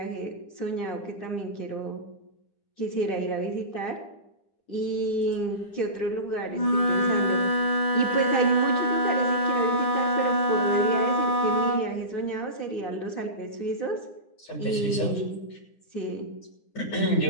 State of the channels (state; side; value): late; right; 9.8 ms